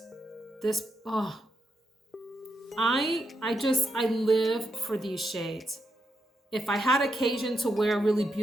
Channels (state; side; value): normal; both; correlation 0.83